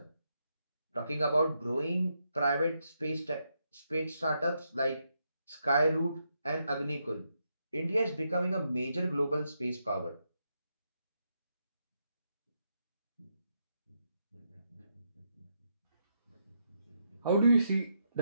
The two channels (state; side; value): inverted; both; correlation -0.81